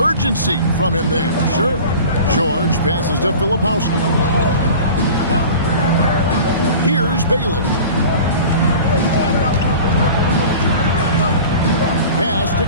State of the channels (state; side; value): inverted; both; correlation -0.39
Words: from him there. Sure. George passes to Filipowski. Here's Bailey. Pass to